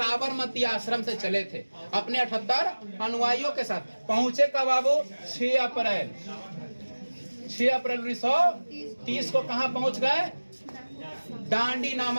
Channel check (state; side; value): inverted; both; correlation -1.00